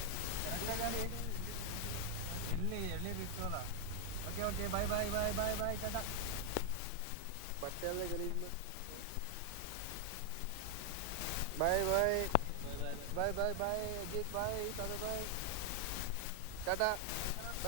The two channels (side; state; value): both; different; correlation 0.00